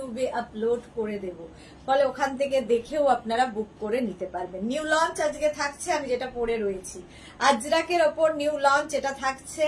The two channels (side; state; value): both; identical; correlation 1.00